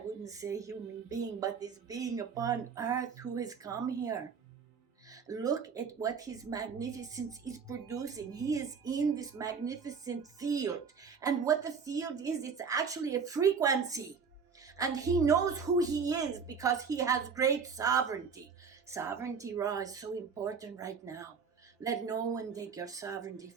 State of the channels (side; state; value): left; quieter; 5.9 dB